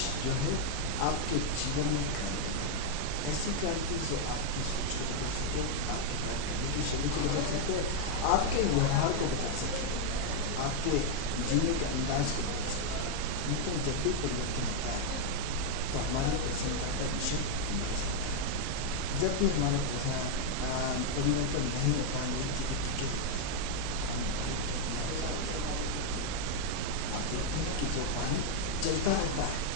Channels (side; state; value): both; normal; correlation 0.00